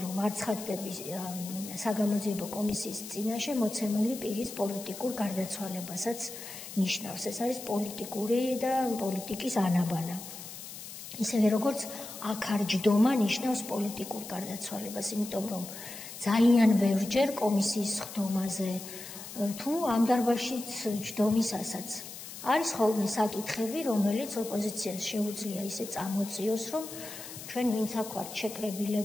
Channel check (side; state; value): left; noise; hiss, 12 dB below the sound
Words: რომ არ ცხადდები საგამოძიებო კომისიის წინაშე მოცემული პირის პოლიტიკურ გარდაცვალებასაც ნიშნავს. ეს არის პოლიტიკური და პოლიტიკის ანაბანა. ისევე როგორც აქარჯდომა ნიშნავს პოლიტიკურ გარდაცვალებას, იმიტომ რომ ძალიან ბევრჯერ კომისიის სხდომაზე თუ ამ დარბაზშიც ჯდომისასაც არის ხოლმე საკითხები, რომელიც ოპოზიციას შეუძლია ისე წამოწიოს, რომ ჩვენ ვინც აქ ვართ